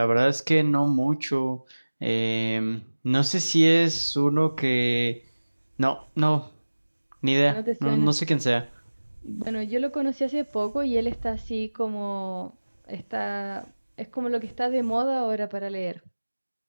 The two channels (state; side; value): inverted; both; correlation -1.00